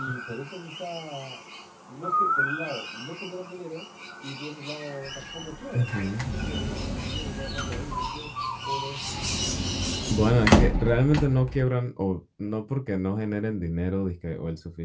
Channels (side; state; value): both; identical; correlation 1.00